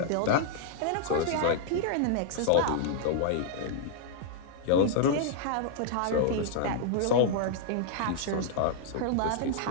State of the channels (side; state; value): both; different; correlation -0.01